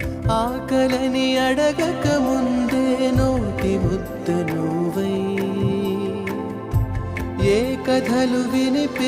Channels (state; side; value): identical; both; correlation 1.00